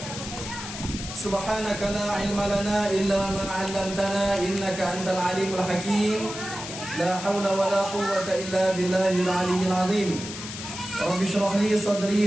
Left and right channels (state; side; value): noise; left; hiss, 9 dB below the sound